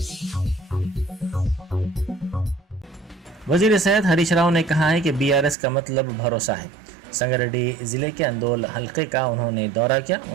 वज़ीर सेहत हरीश राव ने कहा है कि BRS का मतलब भरोसा है। संगारेड्डी ज़िले के अंदोल हल्के का उन्होंने दौरा किया।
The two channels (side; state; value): left; drops out; at 5.6 s